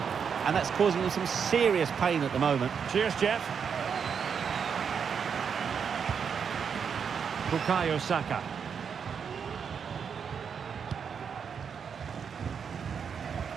and that's causing him some serious pain at the moment. Cheers, Jeff. Bukayo Saka.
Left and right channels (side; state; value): left; quieter; 6.8 dB